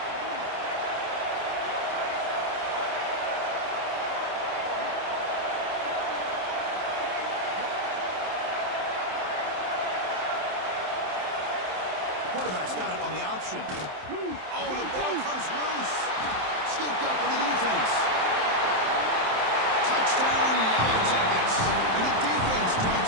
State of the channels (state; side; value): late; left; 27 ms